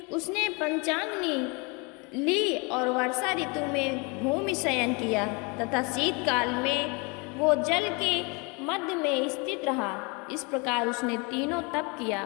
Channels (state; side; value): quieter; right; 30.3 dB